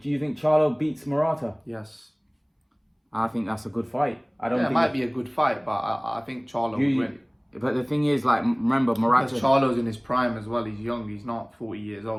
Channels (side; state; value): both; identical; correlation 1.00